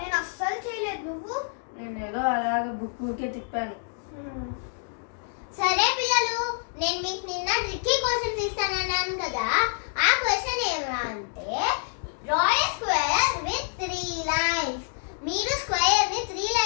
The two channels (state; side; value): silent; right; digital silence